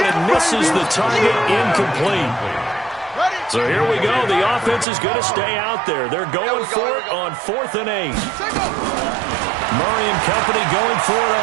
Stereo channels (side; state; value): left; drops out; at 4.9 s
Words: it misses the target, incomplete. So here we go. The offense is going to stay out there. They're going for it on 4th and 8. Murray and company going for it